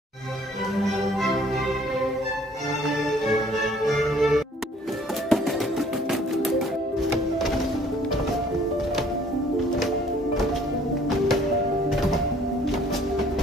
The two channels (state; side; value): normal; both; correlation 0.58